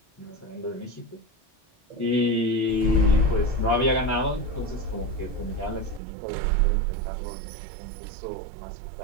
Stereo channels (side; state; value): left; drops out; at 6.0 s